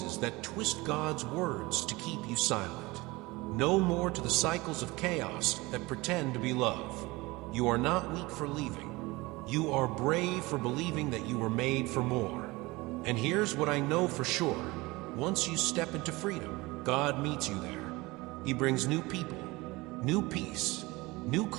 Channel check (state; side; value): quieter; left; 22.2 dB